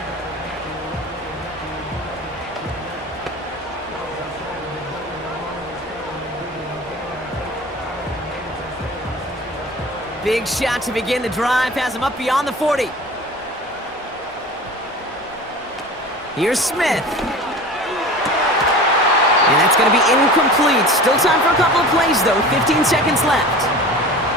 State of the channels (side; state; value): both; normal; correlation 0.37